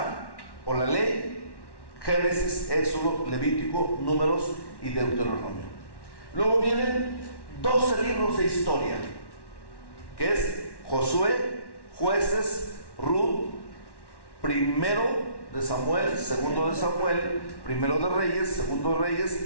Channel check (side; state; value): right; late; 1.1 ms